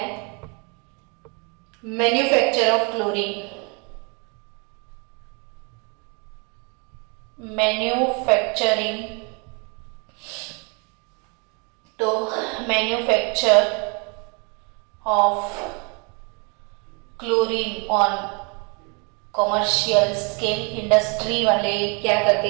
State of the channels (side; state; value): left; quieter; 33.2 dB